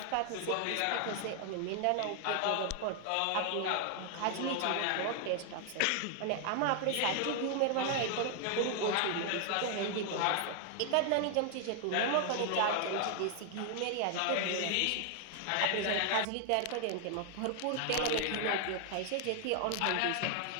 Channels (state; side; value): different; both; correlation 0.00